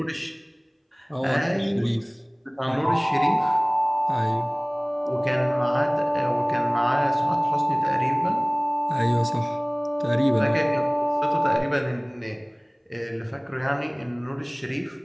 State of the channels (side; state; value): both; identical; correlation 1.00